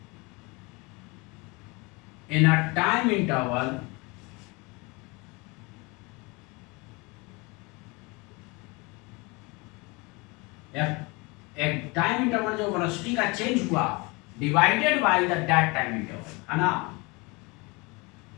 in a time interval एक टाइम इंटरवल जो velocity का change हुआ divided by the that time interval, है ना।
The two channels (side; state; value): right; quieter; 26.9 dB